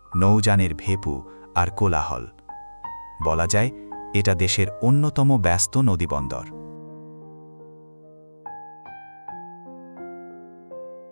নৌযানের ভেপু আর কোলাহল। বলা যায় এটা দেশের অন্যতম ব্যস্ত নদীবন্দর।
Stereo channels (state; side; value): inverted; both; correlation -1.00